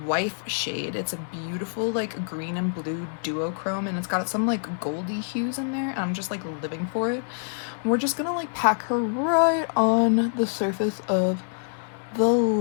Wife shade. It's a beautiful, like, green and blue duochrome, and it's got some, like, goldy hues in there, and I'm just, like, living for it. We're just gonna like pack her right on the surface of the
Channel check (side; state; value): right; silent; digital silence